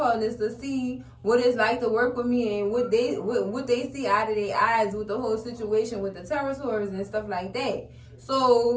to see what it's like to work with me and what they see out of their eyes with the whole situation with the territories and stuff like that.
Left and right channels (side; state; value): both; identical; correlation 1.00